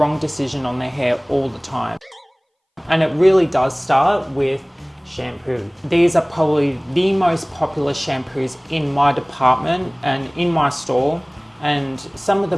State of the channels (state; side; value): identical; both; correlation 1.00